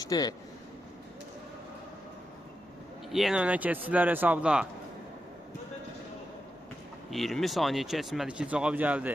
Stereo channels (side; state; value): both; normal; correlation 0.88